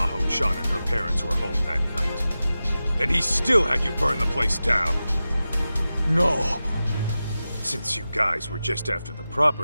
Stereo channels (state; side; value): inverted; both; correlation -0.94